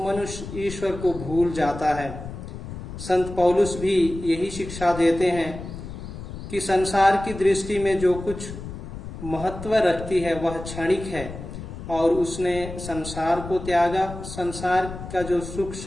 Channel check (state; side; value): noise; left; rumble, 10 dB below the sound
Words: मनुष्य ईश्वर को भूल जाता है। संत पौलुस भी यही शिक्षा देते हैं कि संसार की दृष्टि में जो कुछ महत्व रखती है वह क्षणिक है, और उसने संसार को त्यागा। संसार का जो सुख